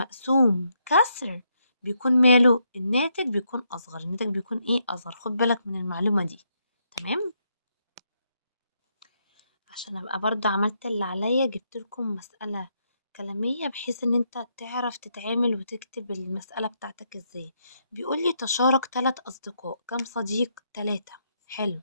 كسر بيكون ماله؟ الناتج بيكون اصغر. الناتج بيكون ايه؟ اصغر. خد بالك من المعلومة دي. تمام. عشان ابقى برضه عملت اللي عليا، جبت لكم مسألة كلامية بحيث ان انت تعرف تتعامل وتكتب المسألة بتاعتك ازاي. بيقول لي تشارك 3 اصدقاء. كم صديق؟ 3. حلو.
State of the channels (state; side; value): inverted; both; correlation -0.78